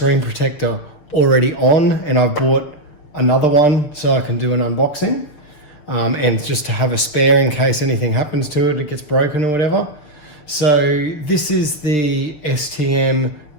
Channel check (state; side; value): late; right; 6.7 ms